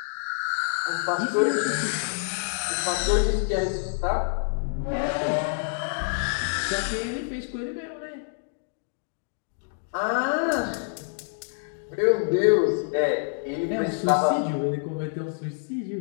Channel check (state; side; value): silent; right; digital silence